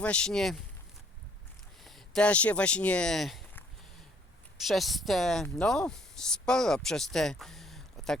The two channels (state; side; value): normal; both; correlation 0.63